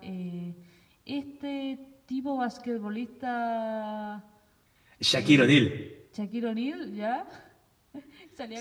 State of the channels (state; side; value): identical; both; correlation 1.00